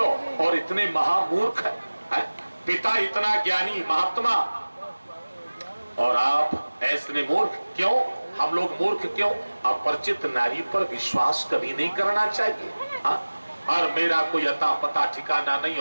और इतने महामूर्ख है? पिता इतना ज्ञानी महात्मा और आप ऐसे मूर्ख क्यों? हम लोग मूर्ख क्यों? अपरिचित नारी पर विश्वास कभी नहीं करना चाहिए, हाँ? और मेरा कोई अता पता ठिकाना नहीं,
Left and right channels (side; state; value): both; inverted; correlation -1.00